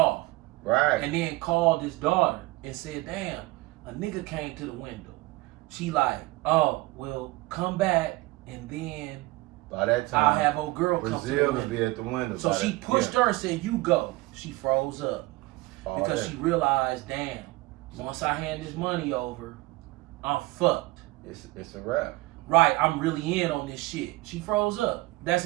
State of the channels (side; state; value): left; quieter; 20.8 dB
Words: Right. And then called his daughter and said, damn, a nigga came to the window. She like, oh, well, come back and then by that time I'll have old girl come to the window. Brazil will be at the window. So she pushed her and said, you go. She froze up. Because she realized, damn, once I hand this money over, I'm fucked. It's a wrap. Right, I'm really in on this shit. She froze up. That's